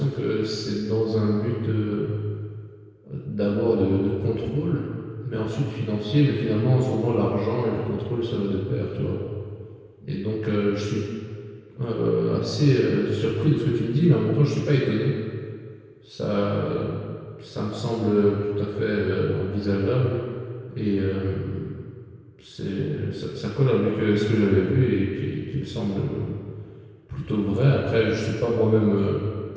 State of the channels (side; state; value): both; identical; correlation 1.00